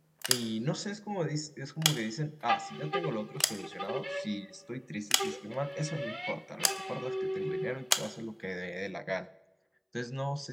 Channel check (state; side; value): identical; both; correlation 1.00